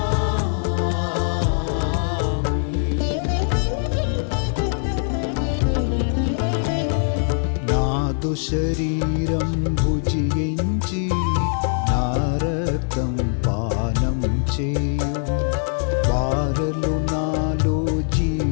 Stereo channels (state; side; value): silent; right; 64 dB below the other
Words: నాదు శరీరం భుజించి నా రక్తం పానం చేయు వారలు నాలో